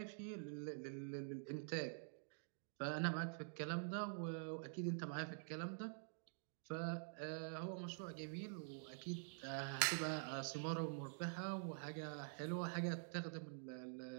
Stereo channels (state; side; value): silent; left; digital silence